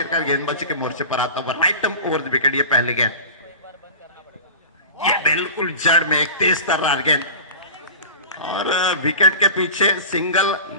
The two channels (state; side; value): inverted; both; correlation -0.35